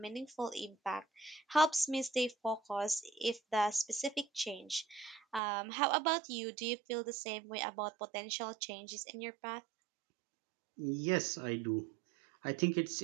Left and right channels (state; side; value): drops out; left; at 5.4 s